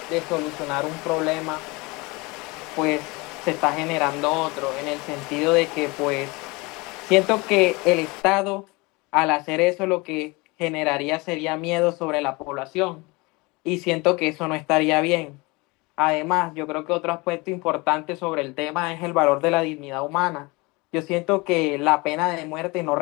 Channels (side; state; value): right; quieter; 25.3 dB